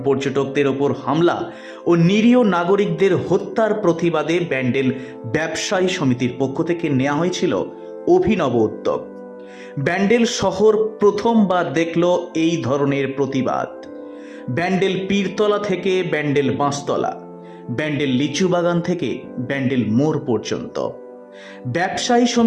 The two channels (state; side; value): identical; both; correlation 1.00